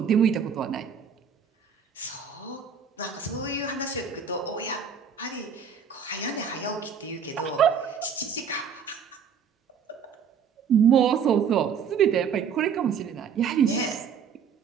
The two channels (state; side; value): quieter; left; 6.9 dB